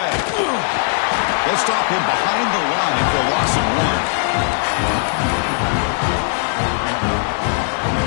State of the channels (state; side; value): silent; right; digital silence